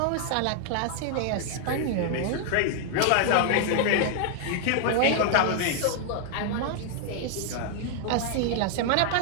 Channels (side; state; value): both; different; correlation 0.00